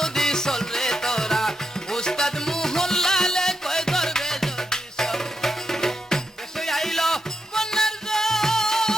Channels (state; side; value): normal; both; correlation 0.84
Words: চলরে তোরা উস্তাদ মোহনলালে কয় ধরবে যদি চল দেশে আইলো বন্যার